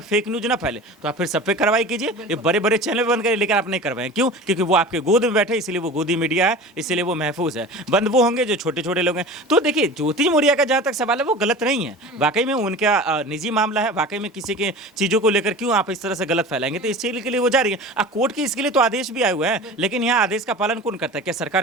न्यूज ना फैले, तो आप फिर सब पे कार्रवाई कीजिए। ये बड़े बड़े चैनल बंद करिए, लेकिन आप नहीं करवाएं। क्यों? क्योंकि वो आपके गोद में बैठे, इसलिए वो गोदी मीडिया है, इसलिए वो महफूज है। बंद वो होंगे जो छोटे छोटे लोग हैं। तो देखिए, ज्योति मौर्य का जहां तक सवाल है वो गलत नहीं है, वाकई में उनका निजी मामला है, वाकई में किसी के चीजों को लेकर क्यों आप इस तरह से गलत फैलाएंगे। तो इस चीज के लिए वो जा रही है। कोर्ट की इसके लिए तो आदेश भी आए हुए हैं, लेकिन यहाँ आदेश का पालन कौन करता है? क्या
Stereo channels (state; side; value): normal; both; correlation 0.36